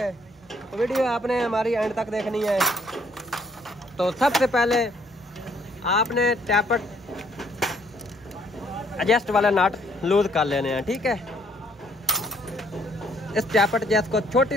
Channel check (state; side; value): normal; both; correlation 0.65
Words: तो वीडियो आपने हमारी एंड तक देखनी है। तो सबसे पहले आपने टैपट एडजस्ट वाला नट लूज कर लेने हैं, ठीक है। इस टैपट जैस को